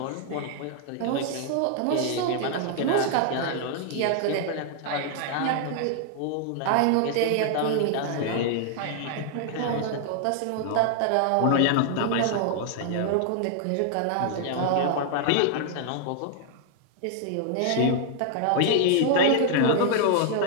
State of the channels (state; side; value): different; both; correlation 0.00